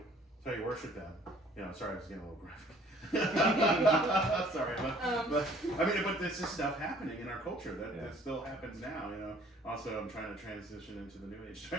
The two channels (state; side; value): normal; both; correlation 0.56